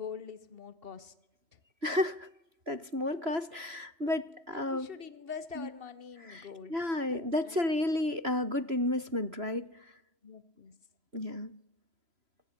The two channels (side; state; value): left; late; 3.0 ms